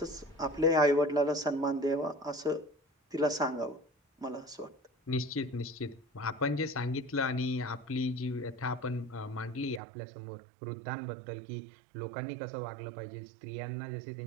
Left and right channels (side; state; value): left; drops out; at 9.8 s